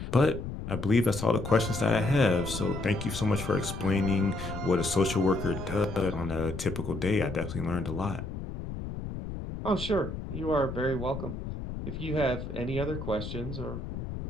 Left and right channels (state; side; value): noise; left; rumble, 7 dB below the sound